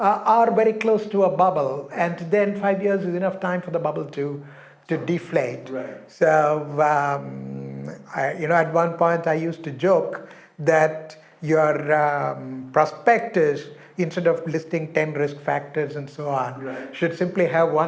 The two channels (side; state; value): both; identical; correlation 1.00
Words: very close to a bubble. And then 5 years is enough time for the bubble to deflate. Right. So, at one point I used to joke that your prospectus, instead of listing 10 risk factors and so on, Right. should simply have